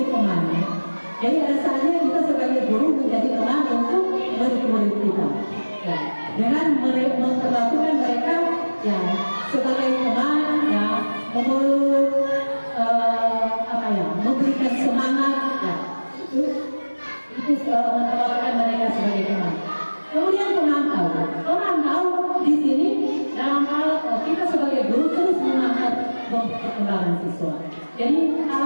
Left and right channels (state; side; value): inverted; both; correlation -1.00